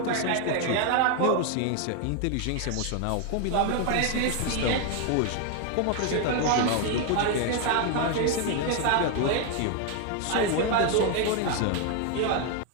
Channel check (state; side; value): different; both; correlation 0.01